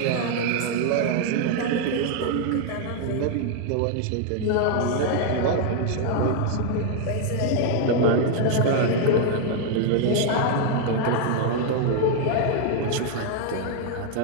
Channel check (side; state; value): both; different; correlation 0.00